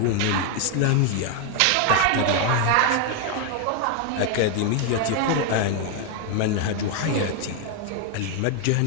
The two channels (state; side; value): different; both; correlation 0.01